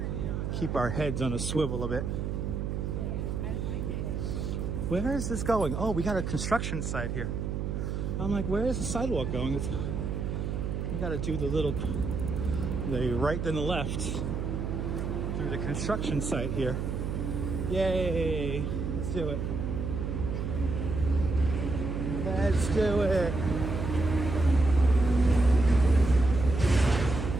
keep our heads on a swivel a bit. Where is this going? Oh, we got a construction site here. I'm like, where is the sidewalk going? We gotta do the right then the left through the construction site here. Yay! Let's do it. Let's do it.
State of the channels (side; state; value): right; noise; hum, 2 dB below the sound